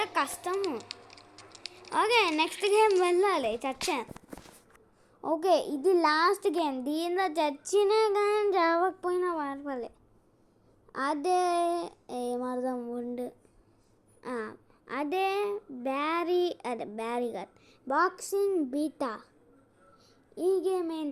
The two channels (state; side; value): identical; both; correlation 1.00